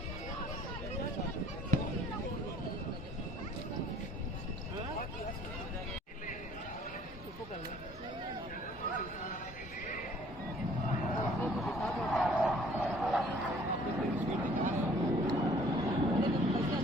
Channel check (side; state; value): both; normal; correlation 0.56